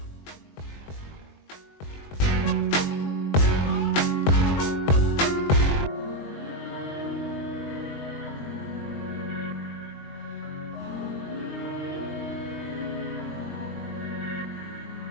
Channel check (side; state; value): right; late; 21 ms